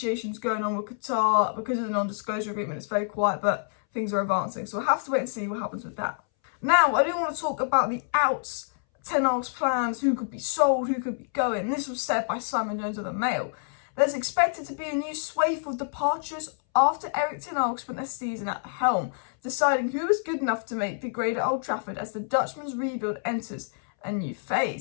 going on with Qatar because of the non-disclosure agreement. It's very quiet, but things are advancing. So we'll have to wait and see what happens with that. Now, I do want to talk about the outs, Ten Hag's plans, who could be sold, who could be going. This was said by Simon Jones of the Mail. There's expected to be a new swathe of departures after Erik Ten Hag spent a season at the helm, deciding who is good enough to make the grade at Old Trafford as the Dutchman's rebuild enters a new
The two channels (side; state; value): right; silent; 60 dB below the other